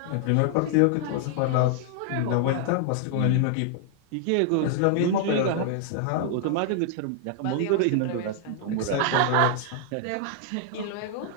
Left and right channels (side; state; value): both; different; correlation 0.00